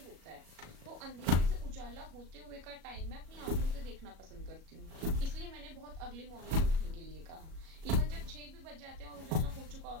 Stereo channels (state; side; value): late; left; 37 ms